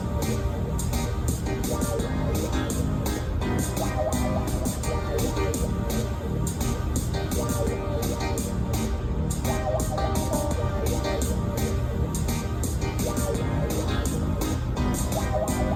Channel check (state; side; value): identical; both; correlation 1.00